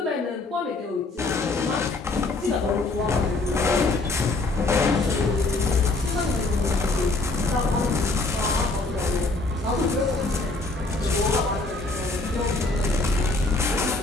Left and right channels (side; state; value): right; quieter; 3.3 dB